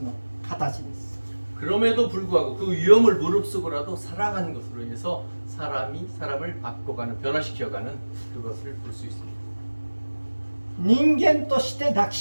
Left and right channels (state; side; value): inverted; both; correlation -1.00